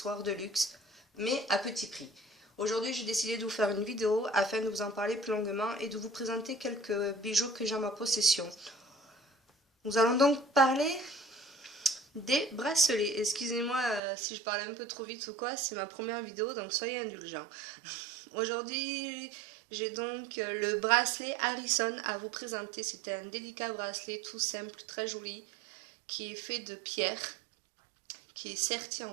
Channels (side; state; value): left; drops out; at 14.0 s